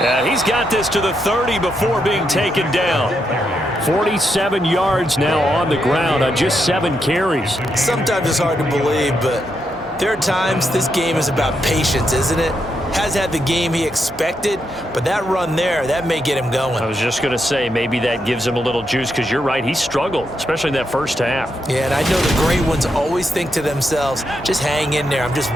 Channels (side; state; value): both; normal; correlation 0.82